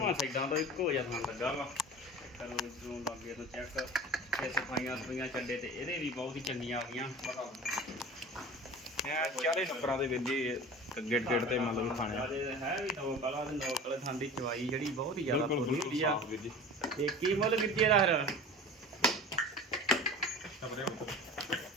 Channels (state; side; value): normal; both; correlation 0.37